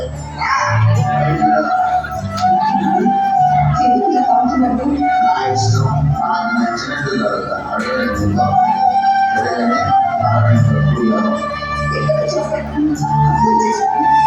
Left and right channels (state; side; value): identical; both; correlation 1.00